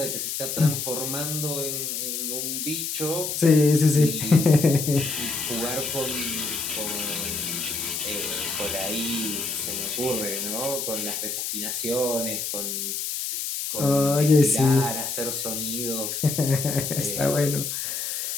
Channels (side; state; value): left; noise; hiss, 3 dB below the sound